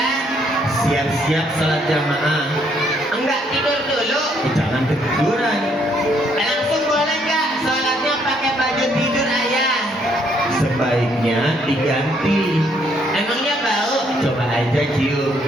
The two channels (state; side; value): normal; both; correlation 0.69